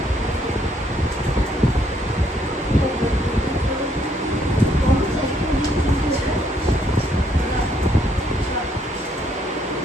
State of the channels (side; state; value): both; normal; correlation 0.69